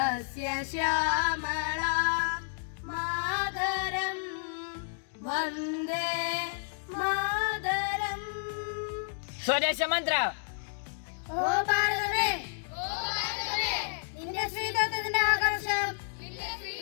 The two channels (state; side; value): silent; right; digital silence